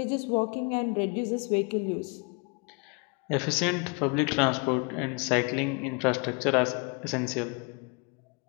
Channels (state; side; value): quieter; right; 32.8 dB